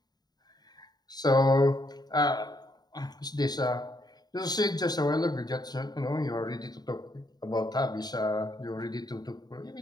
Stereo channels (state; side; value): late; right; 0.20 ms